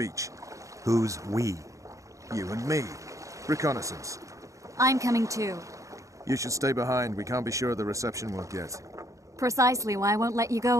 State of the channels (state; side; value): late; left; 0.16 ms